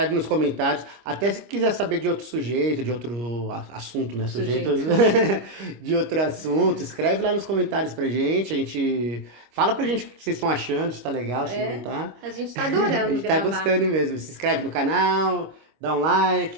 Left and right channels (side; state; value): left; late; 25 ms